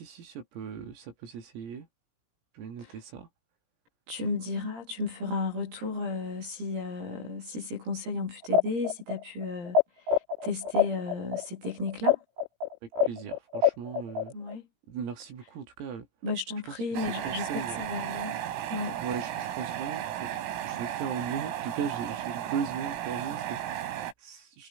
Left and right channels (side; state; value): left; late; 17 ms